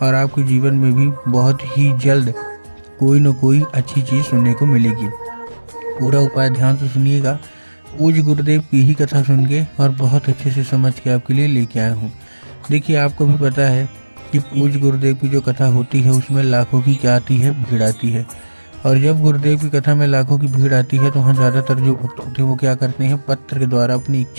और आपके जीवन में भी बहुत ही जल्द कोई न कोई अच्छी चीज़ सुनने को मिलेगी। पूरा उपाय ध्यान से सुनिएगा। पूज्य गुरुदेव की ही कथा सुन के और बहुत अच्छे से समझ के आपके लिए लेके आया हूँ। देखिए, आपको भी पता है कि पूज्य गुरुदेव की जो कथा होती है उसमें लाखों की क्या आती है, भीड़ आती है। और जब गुरुदेव की कथा में लाखों की भीड़ आती है तो वहाँ ज़्यादातर जो भक्त होते हैं वो क्या करते हैं, पत्र के द्वारा अपनी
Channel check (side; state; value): both; inverted; correlation -1.00